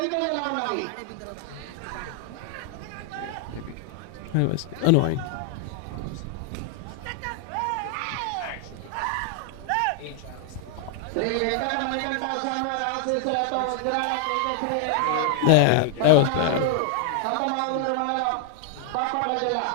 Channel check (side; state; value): both; different; correlation 0.00